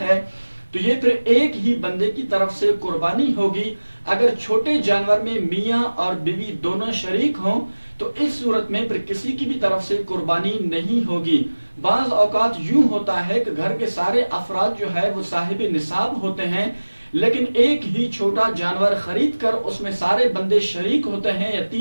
है, तो ये फिर एक ही बंदे की तरफ से कुर्बानी होगी। अगर छोटे जानवर में मियाँ और बीवी दोनों शरीक हों तो इस सूरत में फिर किसी की भी तरफ से कुर्बानी नहीं होगी। बाज औकात यूं होता है कि घर के सारे अफराद जो है वो साहिब निसाब होते हैं, लेकिन एक ही छोटा जानवर खरीद कर उसमें सारे बंदे शरीक होते हैं या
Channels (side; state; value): both; inverted; correlation -1.00